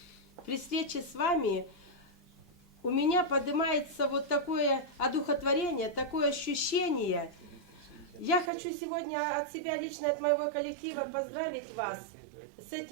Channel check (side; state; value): left; drops out; at 8.5 s